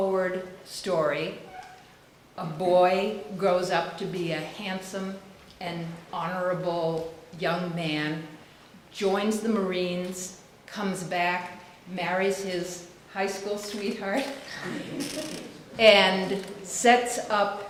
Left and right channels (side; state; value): both; identical; correlation 1.00